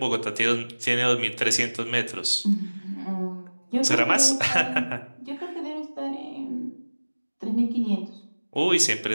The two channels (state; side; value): inverted; both; correlation -1.00